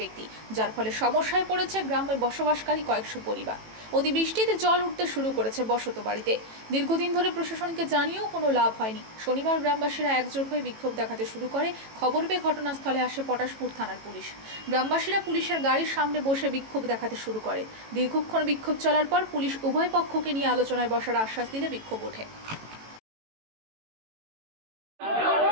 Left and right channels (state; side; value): late; left; 18 ms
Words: যার ফলে সমস্যায় পড়েছে গ্রামে বসবাসকারী কয়েকশো পরিবার। অতিবৃষ্টিতে জল উঠতে শুরু করেছে বসত বাড়িতে। দীর্ঘদিন ধরে প্রশাসনকে জানিয়েও কোনো লাভ হয়নি। শনিবার গ্রামবাসীরা একজোট হয়ে বিক্ষোভ দেখাতে শুরু করে। খবর পেয়ে ঘটনাস্থলে আসে পটাশপুর থানার পুলিশ। গ্রামবাসীরা পুলিশের গাড়ির সামনে বসে বিক্ষোভ দেখাতে শুরু করে। দীর্ঘক্ষণ বিক্ষোভ চলার পর পুলিশ উভয় পক্ষকে নিয়ে আলোচনায় বসার আশ্বাস দিলে বিক্ষোভ ওঠে।